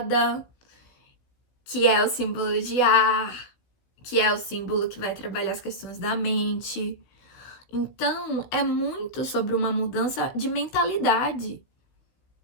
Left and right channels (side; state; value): right; late; 16 ms